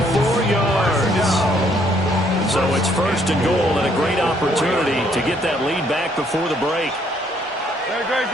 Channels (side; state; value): both; normal; correlation 0.67